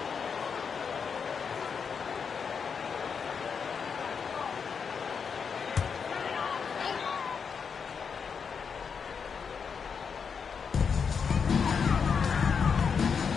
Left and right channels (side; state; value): right; quieter; 6.2 dB